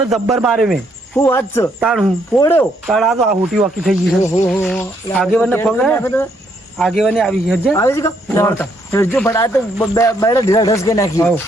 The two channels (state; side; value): normal; both; correlation 0.72